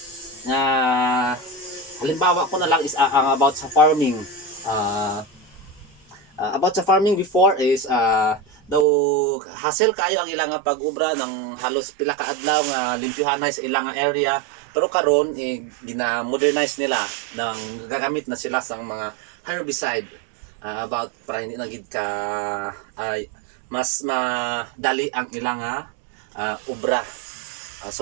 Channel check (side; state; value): left; drops out; at 8.8 s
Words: halimbawa ko na lang is ang about sa farming. About sa farming before is daw hassle kayo ang ilang pag-ubra ng halos pila ka adlaw nga limpyuhanay sa ilang area, pero karon gina-modernize nila nang gagamit na sila sa mga herbicide about para hindi na gid ka mas madali ang ilang ubra.